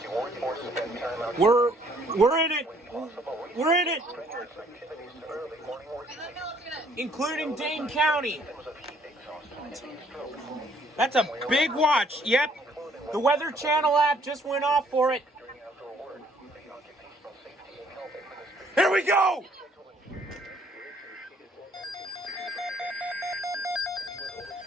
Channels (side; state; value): both; normal; correlation 0.63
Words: you work or spend time out. We're in it. We're in it. Including Dane County. That's a big watch. Yep. The Weather Channel app just went off for it. Here we go.